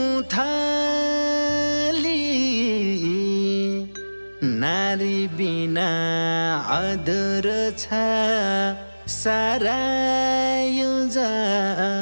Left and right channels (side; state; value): both; inverted; correlation -1.00